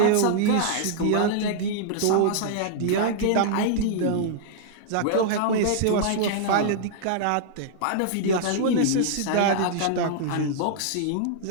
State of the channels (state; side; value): different; both; correlation -0.01